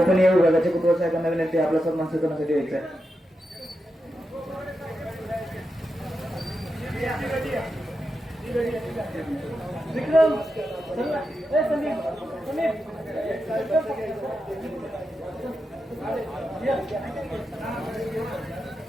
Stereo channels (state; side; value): normal; both; correlation 0.88